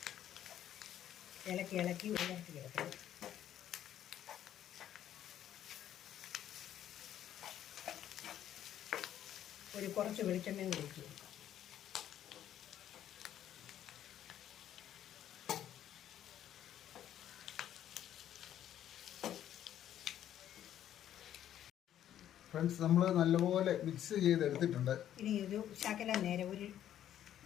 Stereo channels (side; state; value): right; quieter; 11.1 dB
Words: ഇളക്കി ഉയർത്തി കിടക്കണം. കുറച്ച് വെളിച്ചെണ്ണയും കൂടി ഒഴിച്ച് കൊടുക്കാം. ഫ്രണ്ട്സ്, നമ്മൾ നല്ലപോലെ മിക്സ് ചെയ്തെടുത്തിട്ടുണ്ട്. ഇനി ഒരു ശകലം നേരം ഒരു